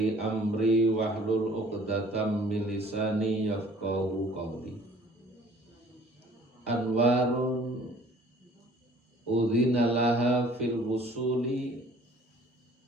amri wahlul 'uqdatam min lisani yafqahu qawli. Anwarun udhina laha fil wusuli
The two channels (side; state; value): both; normal; correlation 0.53